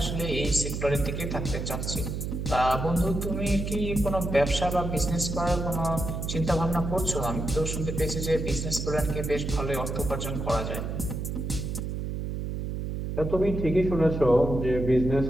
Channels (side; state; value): right; noise; hum, 4 dB below the sound